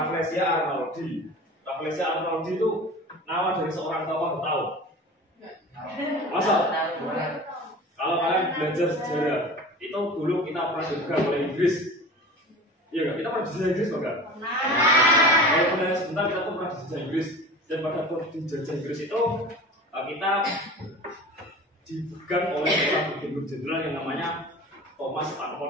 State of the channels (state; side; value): normal; both; correlation 0.37